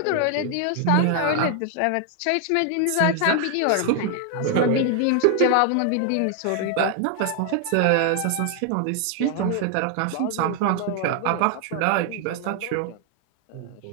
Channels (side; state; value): both; different; correlation 0.00